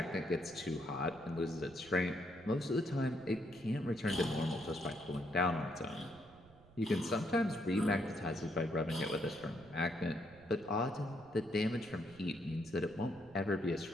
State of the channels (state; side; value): noise; right; rumble, 24 dB below the sound